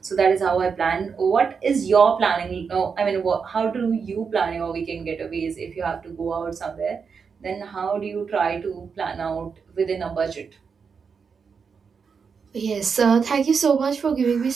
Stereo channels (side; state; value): left; quieter; 5.8 dB